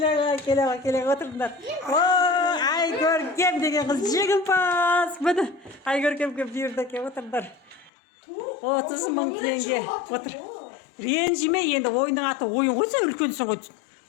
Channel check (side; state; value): right; drops out; at 7.9 s